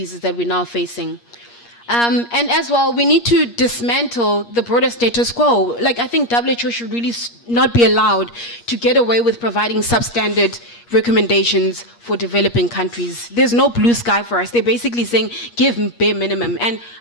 that we're now facing. And as well, we need to dismantle the broader status quo. Like, I think WHO should really not be allowed to get away with providing substandard recommendations for developing countries. There's no blue sky for us. They're basically saying, give bare minimum. And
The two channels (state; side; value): late; right; 8.5 ms